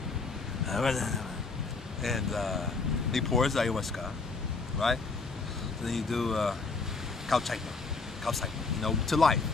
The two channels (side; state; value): right; quieter; 4.1 dB